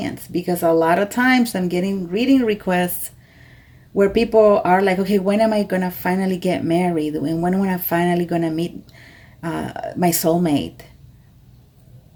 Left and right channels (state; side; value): identical; both; correlation 1.00